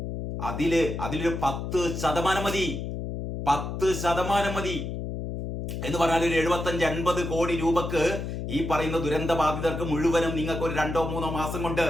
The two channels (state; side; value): noise; left; hum, 5 dB below the sound